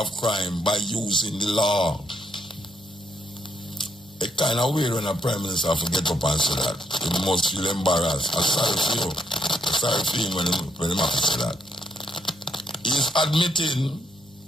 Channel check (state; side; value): normal; both; correlation 0.75